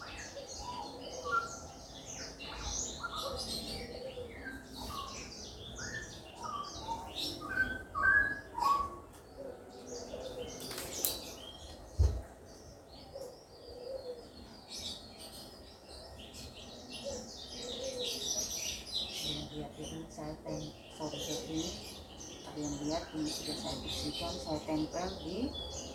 Ini sudah saya bersihkan, saya tempel di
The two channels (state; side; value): identical; both; correlation 1.00